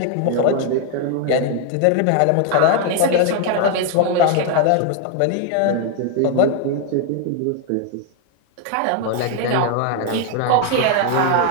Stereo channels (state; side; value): different; both; correlation 0.01